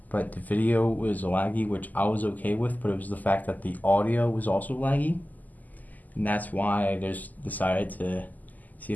but the video was laggy, which I was okay with, but it was the fact that the audio was also laggy, and that's why I just decided to see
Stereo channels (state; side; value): late; right; 0.081 ms